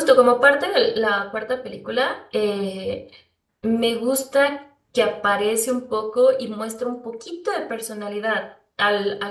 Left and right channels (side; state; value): both; identical; correlation 1.00